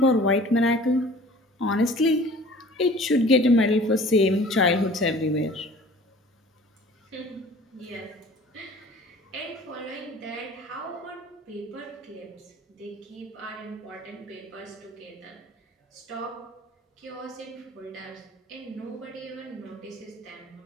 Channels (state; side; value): normal; both; correlation 0.47